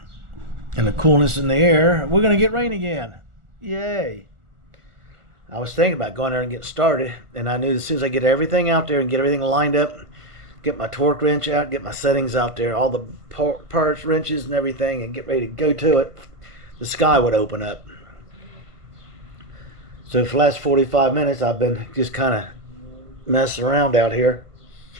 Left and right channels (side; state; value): left; late; 1.4 ms